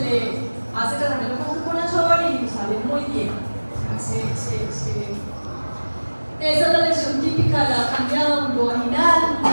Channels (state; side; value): inverted; both; correlation -1.00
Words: hace tratamiento con fluconazol y sale muy bien. Esa es la lesión típica de la cándida vulvovaginal,